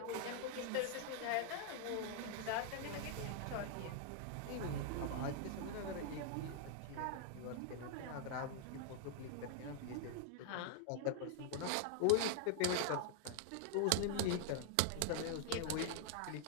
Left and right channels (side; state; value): both; different; correlation 0.00